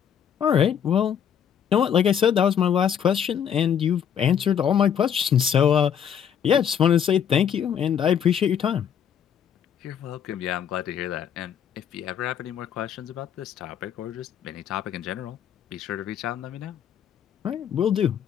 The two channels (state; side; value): quieter; right; 8.5 dB